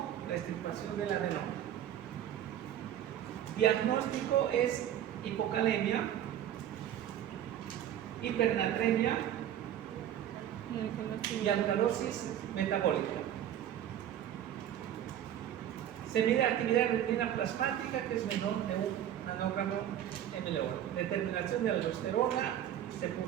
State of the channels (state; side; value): quieter; left; 10.9 dB